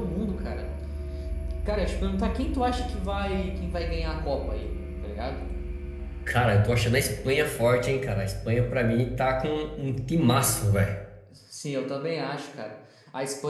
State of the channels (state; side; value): identical; both; correlation 1.00